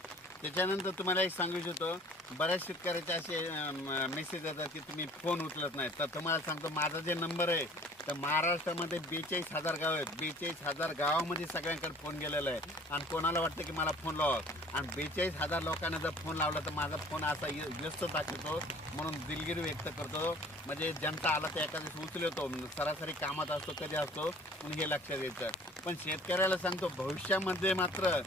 त्याच्यानंतर तुम्हाला एक सांगू इच्छितो, बऱ्याच शेतकऱ्याचे असे मेसेज येतात की तुम्ही फोन उचलत नाही. तर तुम्हाला सांगतो माझा जे नंबर आहे तर महाराष्ट्रामध्ये 42,000 गाव आहेत. 42,000 गावामध्ये सगळ्यांकडे फोन गेलेला आहे. आणि कोणाला वाटतं की मला फोन लावा, आणि 42,000 लोकांना जर फोन लावला तर माझा फोन असा व्यस्त दाखवतो. म्हणून दिलगिरी व्यक्त करतो. म्हणजे जनता आला तर एका दिवशी उचलतो, सरासरी कामात असतो, कधी असतो, म्हणून हे लक्षात घ्यायचं. पण शेतकऱ्याला सांगतो भविष्यामध्ये मात्र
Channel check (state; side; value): normal; both; correlation 0.50